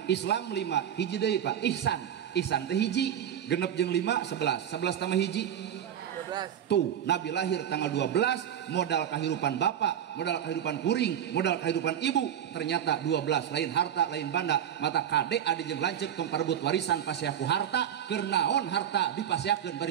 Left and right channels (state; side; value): quieter; left; 9.7 dB